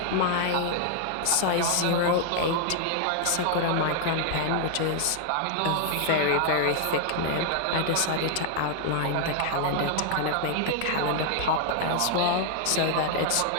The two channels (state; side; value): different; both; correlation 0.00